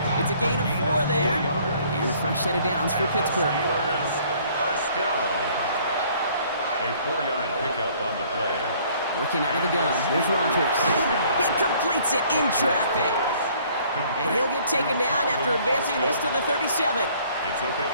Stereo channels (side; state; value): both; inverted; correlation -0.58